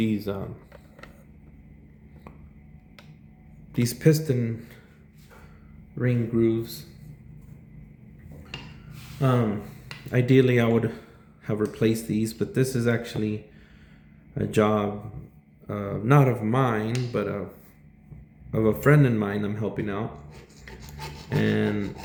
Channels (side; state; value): both; identical; correlation 1.00